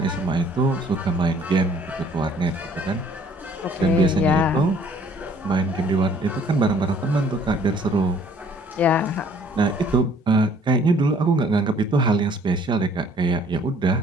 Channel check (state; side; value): normal; both; correlation 0.58